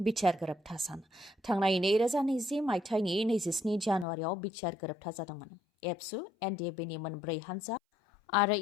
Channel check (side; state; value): right; drops out; at 4.0 s